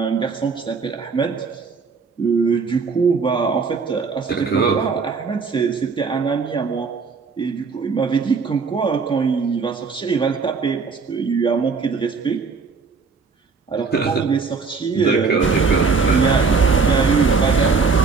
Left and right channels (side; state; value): left; quieter; 5.0 dB